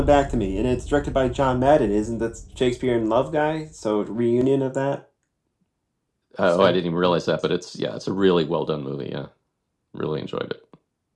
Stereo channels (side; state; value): both; identical; correlation 1.00